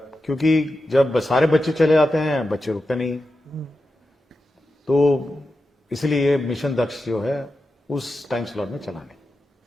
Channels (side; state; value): both; normal; correlation 0.90